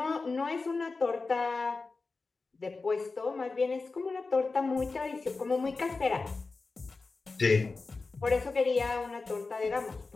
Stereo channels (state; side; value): quieter; right; 3.9 dB